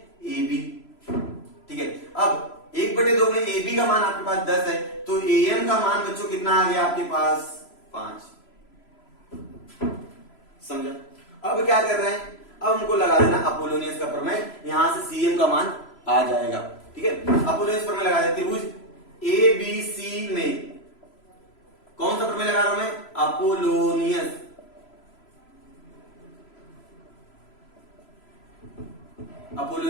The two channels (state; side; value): late; right; 3.0 ms